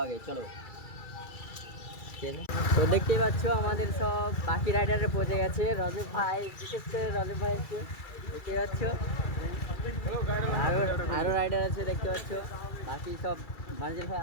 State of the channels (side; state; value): right; late; 2.3 ms